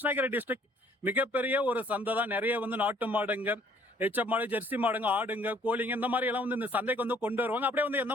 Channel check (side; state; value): both; normal; correlation 0.60